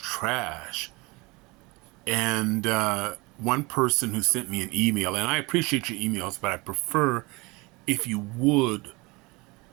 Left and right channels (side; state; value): left; quieter; 25.0 dB